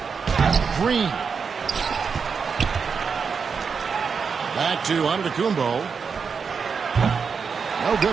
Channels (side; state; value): left; quieter; 5.8 dB